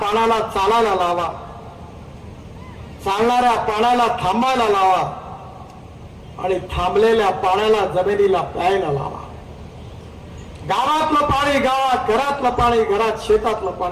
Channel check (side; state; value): both; identical; correlation 1.00